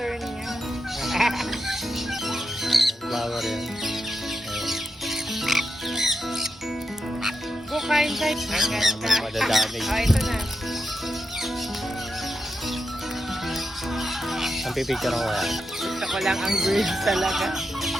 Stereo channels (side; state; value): both; normal; correlation 0.87